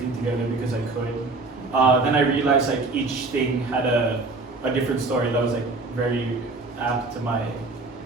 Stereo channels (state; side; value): quieter; left; 3.5 dB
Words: together because I could. Then I realized like each thing had a different story that was like very apt to my